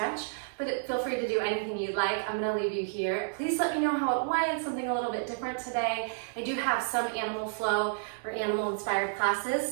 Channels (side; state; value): left; silent; digital silence